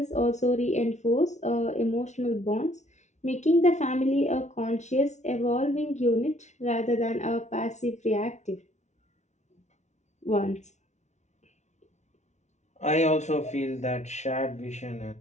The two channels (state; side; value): late; right; 0.33 ms